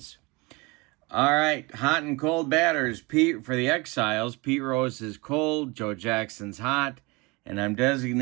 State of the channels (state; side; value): quieter; left; 25.8 dB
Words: All right, hot and cold batters. Pete for the Exiles. Pete Rose is cold. Joe Jackson's hot. And I'm